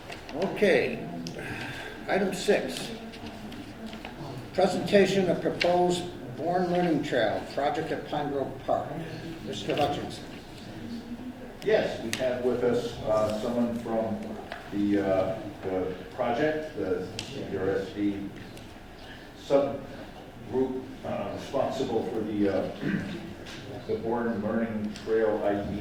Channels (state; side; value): identical; both; correlation 1.00